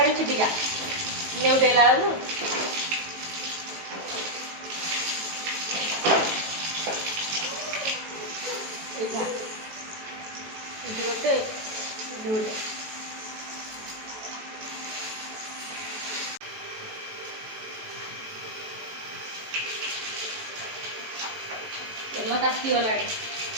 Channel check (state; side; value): late; left; 18 ms